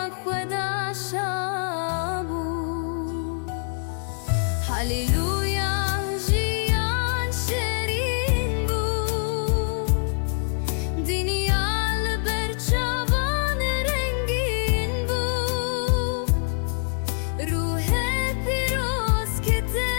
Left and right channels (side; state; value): right; silent; digital silence